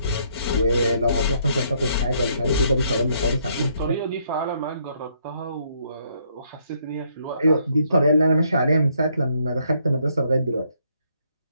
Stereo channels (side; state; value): both; inverted; correlation -0.70